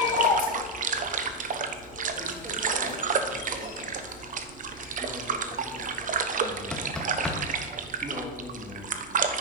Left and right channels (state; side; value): normal; both; correlation 0.01